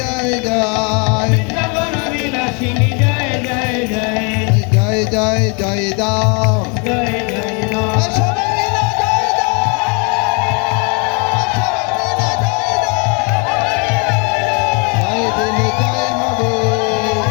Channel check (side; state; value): right; quieter; 34.4 dB